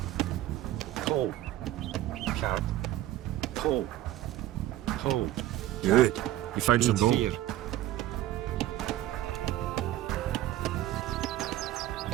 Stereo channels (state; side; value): quieter; left; 14.3 dB